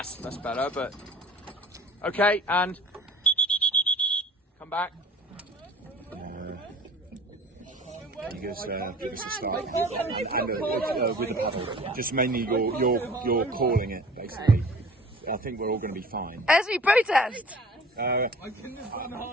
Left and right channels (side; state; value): both; normal; correlation 0.44